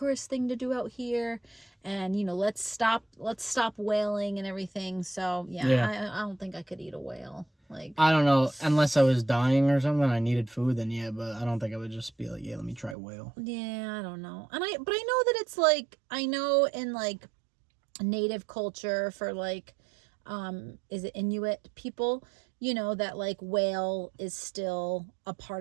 thing to do out here, and let's stop whaling and everything. So yeah. I don't think I could eat a whale. Like, I don't know, unless I was dying or something, I needed food, then yeah, but I don't think I would just be like, yeah, let me try whale. Yeah, I don't know. But I know that it's like, I know in like native culture for like, is it Inuit people, you know, that like whale is still a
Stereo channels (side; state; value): left; drops out; at 13.0 s